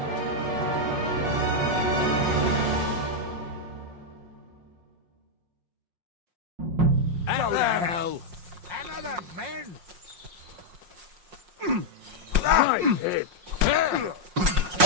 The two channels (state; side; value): late; left; 5.6 ms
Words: Go to hell! Another man! Nice hit.